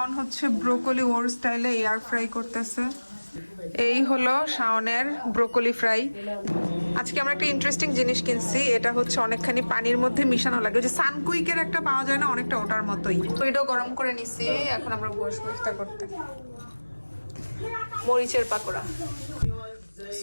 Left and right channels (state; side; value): inverted; both; correlation -1.00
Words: হচ্ছে ব্রোকলি ওর স্টাইলে এয়ার ফ্রাই করতেছে। এই হলো শাওনের ব্রোকলি ফ্রাই। আজকে আমরা একটা ইন্টারেস্টিং জিনিস কিনছি, এটা হচ্ছে অনেকখানি পানির মধ্যে মিশানো লাগে, ওই যে সানকুইকের একটা পাওয়া যায় না, অনেকটা ওটার মতোই। ওইটাও গরম করে নিছি, এখন আমরা বসবো ইফতার করতে। মরিচের পাকোড়া,